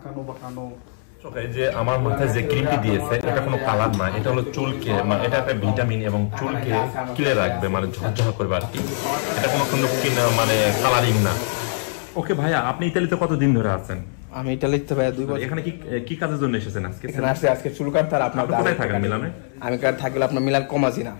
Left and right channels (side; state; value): right; silent; 64 dB below the other